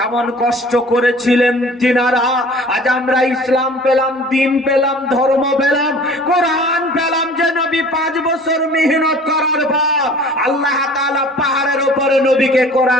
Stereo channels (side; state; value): both; normal; correlation 0.47